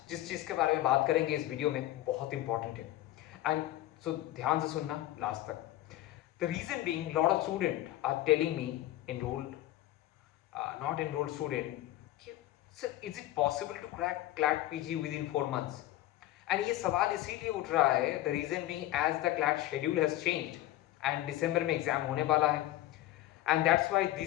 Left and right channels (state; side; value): quieter; right; 15.1 dB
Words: जिस चीज़ के बारे में बात करेंगे इस वीडियो में बहुत इंपॉर्टेंट है एंड सो ध्यान से सुनना लास्ट तक। The reason being lot of student are telling me enrolled not enrolled student, sir is it possible to crack CLAT PG within 4 months? And ये सवाल इसीलिए उठ रहा है, the reason being as the CLAT schedule has changed and December में exam होने वाला है and that's why